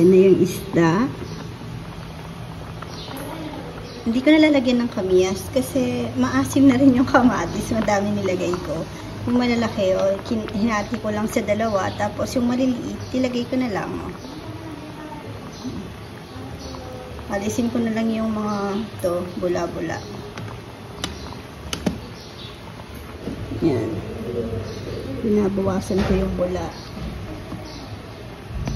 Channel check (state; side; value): identical; both; correlation 1.00